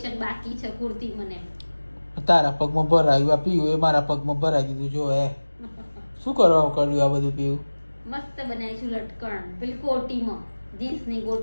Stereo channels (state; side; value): inverted; both; correlation -1.00